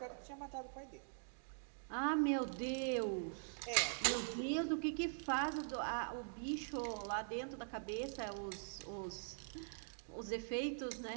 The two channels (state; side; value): silent; left; digital silence